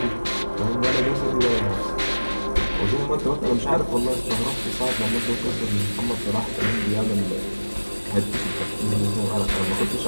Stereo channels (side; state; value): both; inverted; correlation -1.00